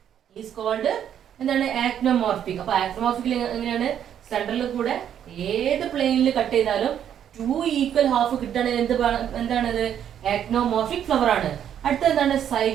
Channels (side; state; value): left; quieter; 9.5 dB